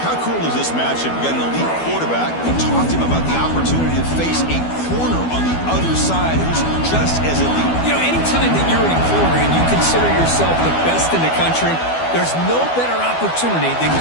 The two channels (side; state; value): right; late; 12 ms